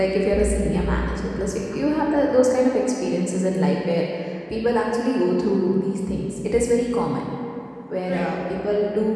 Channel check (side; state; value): both; identical; correlation 1.00